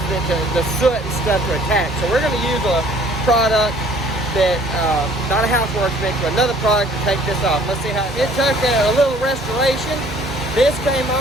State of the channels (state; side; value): normal; both; correlation 0.56